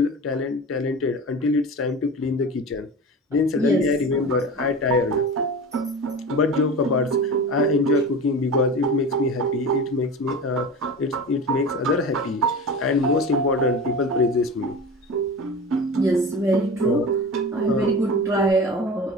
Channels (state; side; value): normal; both; correlation 0.31